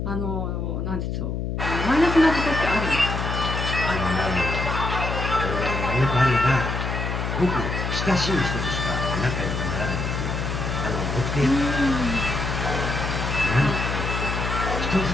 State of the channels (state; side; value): noise; left; hum, 2 dB below the sound